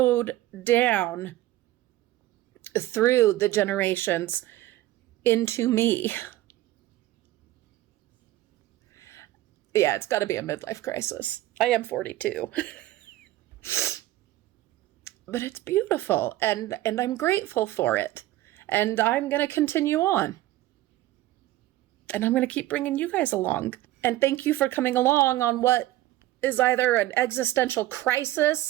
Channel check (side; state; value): left; quieter; 15.8 dB